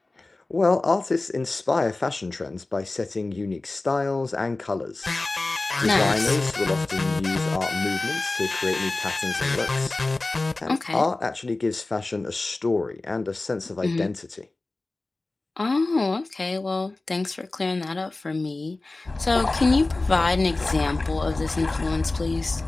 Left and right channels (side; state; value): right; quieter; 3.1 dB